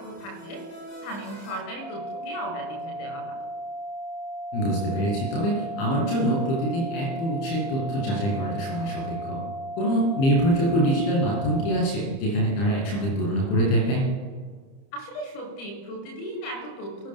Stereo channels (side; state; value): right; late; 30 ms